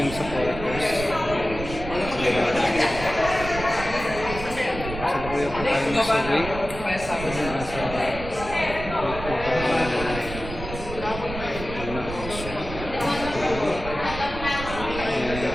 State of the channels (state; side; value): noise; right; rumble, 9 dB below the sound